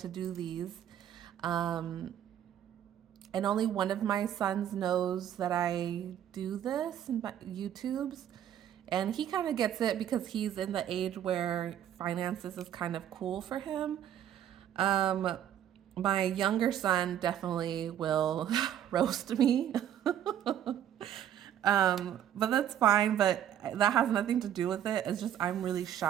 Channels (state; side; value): quieter; left; 10.4 dB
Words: do these. Um, and only one of my sons knows that I do this in my YouTubes. And he kind of gets it because he's in the age where finances is kind of cool for him. Um, my younger son definitely will roast me. But that's fine, but that has nothing to do with it. It's just I'm really